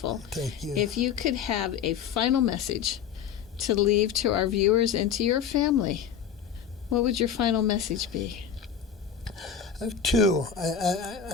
Thank you. If you could have a final message to leave to our viewers and to your family, what would your final message be? I have two.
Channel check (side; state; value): right; quieter; 7.8 dB